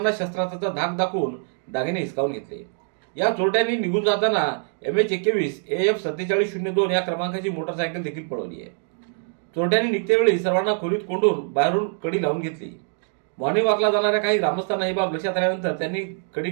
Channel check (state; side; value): silent; left; 55 dB below the other